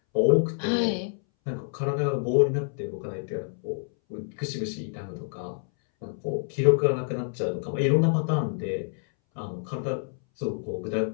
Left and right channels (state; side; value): silent; right; 60 dB below the other